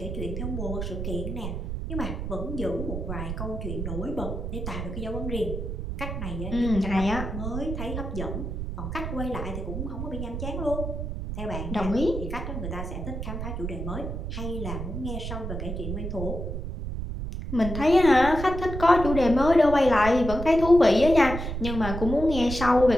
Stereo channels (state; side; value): noise; right; rumble, 5 dB below the sound